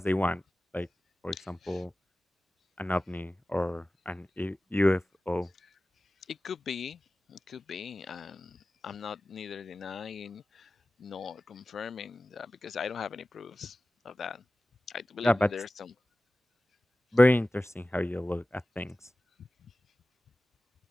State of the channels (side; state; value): both; normal; correlation 0.96